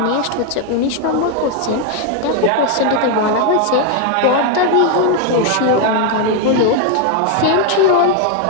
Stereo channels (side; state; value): both; different; correlation 0.01